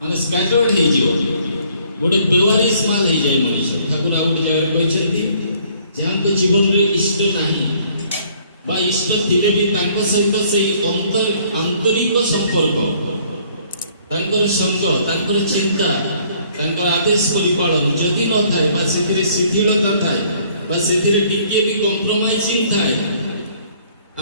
ମାନେ ସ୍କାଟର୍ଡ ହେଇଯିବ, ଗୋଟେ ବେୱାରିସ୍ ମାଲ ହେଇଯାଏ ମଣିଷ। ଠାକୁର ଆଉ ଗୋଟେ ଜାଗାରେ କହିଛନ୍ତି, ଯାହାଙ୍କ ଜୀବନରେ ଇଷ୍ଟ ନାହିଁ ବା ଇଷ୍ଟ ଥିଲେ ବି ତାଙ୍କ ସହିତ ସେଇ ଆନ୍ତରିକ ସମ୍ପର୍କ, ତାଙ୍କର ସଙ୍ଗ, ତାଙ୍କର ଚିନ୍ତା, ତାଙ୍କର ଆଦେଶ ପରିପାଳନ ଯଦି ନଥାଏ ବା ସେଥିରେ ଶିଥିଳତା ଥାଏ ବା ସେଥିରେ ଟିକିଏ ବି କମ୍ପ୍ରମାଇଜିଂ ଥାଏ,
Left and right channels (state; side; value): inverted; both; correlation -0.61